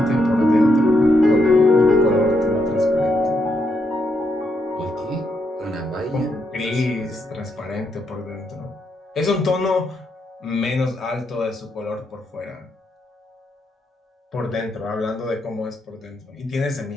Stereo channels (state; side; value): normal; both; correlation 0.79